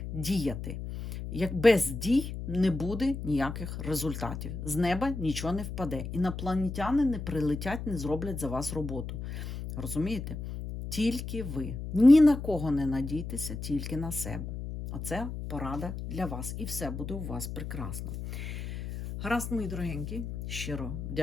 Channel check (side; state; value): left; noise; hum, 7 dB below the sound